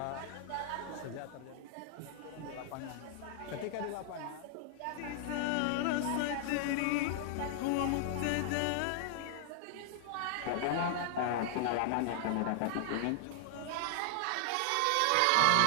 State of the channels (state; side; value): different; both; correlation -0.01